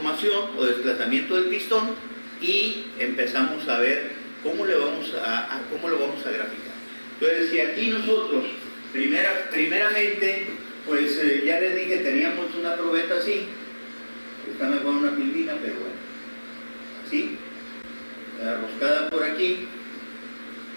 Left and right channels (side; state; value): both; inverted; correlation -1.00